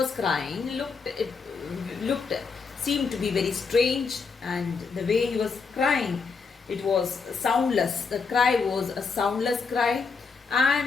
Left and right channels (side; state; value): right; quieter; 5.0 dB